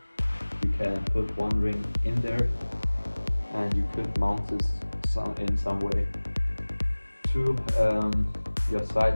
you can put 1 ring in there, and you could mount this in some way to your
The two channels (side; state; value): both; inverted; correlation -1.00